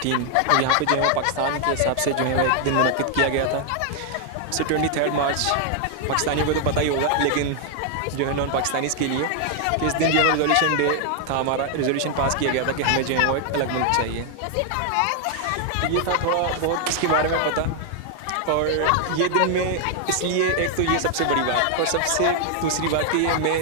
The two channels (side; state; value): both; different; correlation 0.00